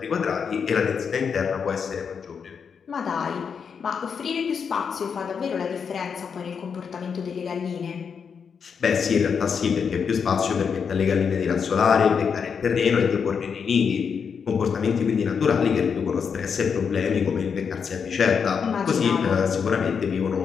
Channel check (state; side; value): quieter; right; 6.4 dB